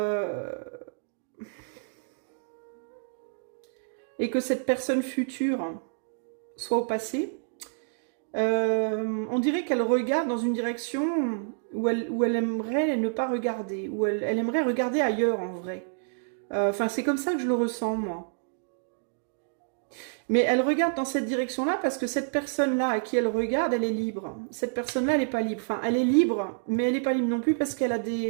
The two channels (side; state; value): left; silent; digital silence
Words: cette personne future soit au passé? On dirait qu'elle regarde dans une direction où elle aimerait ne pas regarder, où elle aimerait regarder ailleurs en vrai. Enfin, c'est comme ça que je le ressens, moi. Mais elle regarde dans cette direction-là parce que cette personne-là à qui elle regarde, elle est libre. Cette personne-là, elle n'est pas libre. Enfin, elle est libre, mais elle n'est pas libre non plus parce qu'elle a